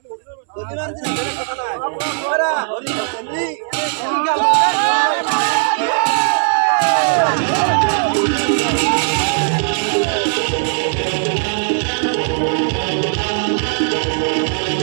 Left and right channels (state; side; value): silent; left; 68 dB below the other